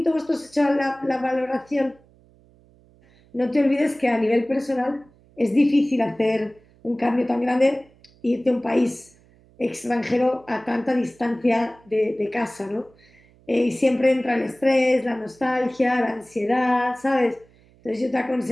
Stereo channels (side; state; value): right; noise; hum, 29 dB below the sound